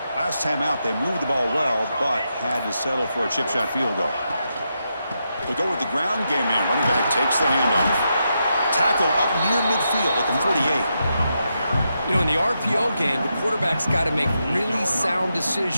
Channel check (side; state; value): both; inverted; correlation -0.84